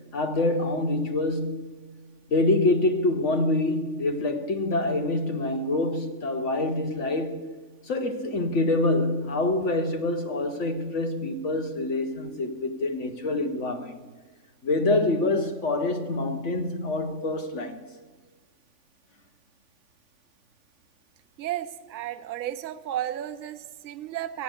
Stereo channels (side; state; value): right; late; 3.5 ms